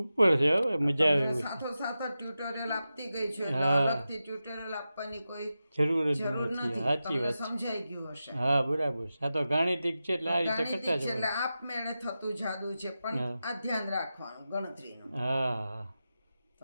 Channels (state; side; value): inverted; both; correlation -0.92